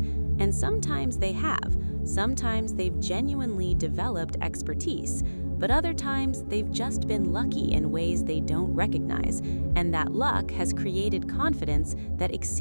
sometimes they have. Sometimes they've genuinely developed expertise. But other times, they've just been lucky in ways they don't recognize, and that luck has created confidence that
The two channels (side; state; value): both; inverted; correlation -1.00